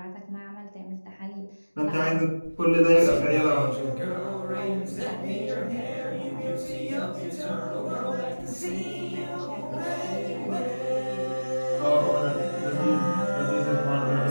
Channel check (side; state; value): both; inverted; correlation -1.00